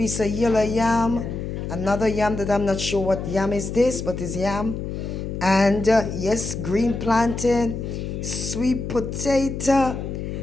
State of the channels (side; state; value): left; noise; hum, 5 dB below the sound